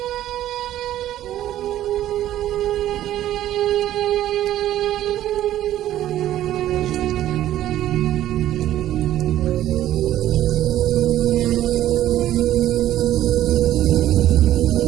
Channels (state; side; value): quieter; left; 12.9 dB